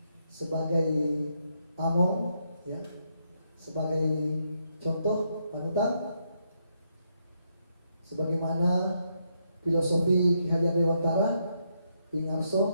sebagai among, ya, sebagai contoh panutan, sebagaimana filosofi Ki Hajar Dewantara Ingarso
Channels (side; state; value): both; inverted; correlation -0.77